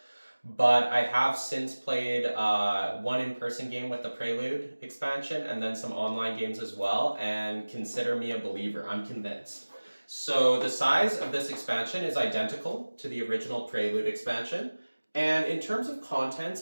but I have since played one in-person game with the Prelude expansion and then some online games as well, and consider me a believer. I'm convinced. So the size of this expansion is identical to the original Prelude expansion, and in terms of contents,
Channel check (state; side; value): inverted; both; correlation -1.00